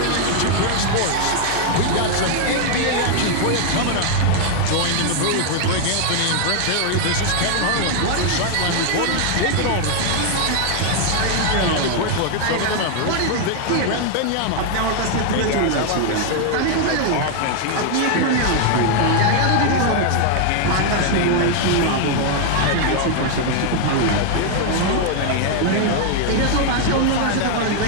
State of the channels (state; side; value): different; both; correlation 0.00